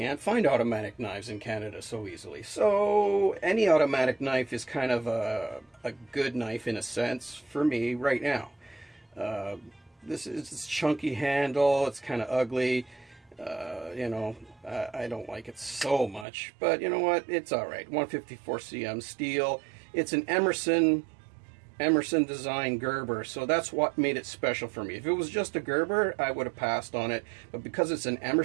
find automatic knives in Canada so easily. So any automatic knife is kind of a good knife in a sense for me right now. This is this chunky handle. It's kind of ugly. You know, I don't like it so much, but you know what? It's all right. 154 cm steel. It's an Emerson design Gerber, so that's what made it special for me. If it was just a Gerber, I would have passed on it, but because it's an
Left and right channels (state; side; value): drops out; left; at 16.2 s